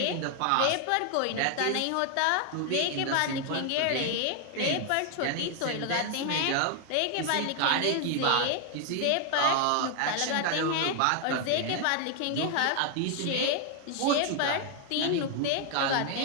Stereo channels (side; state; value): both; different; correlation 0.00